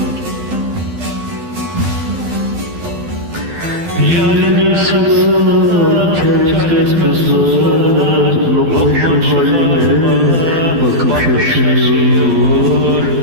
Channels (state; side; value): late; left; 12 ms